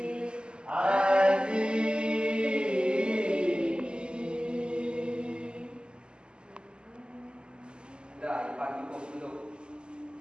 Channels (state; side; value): late; left; 0.049 ms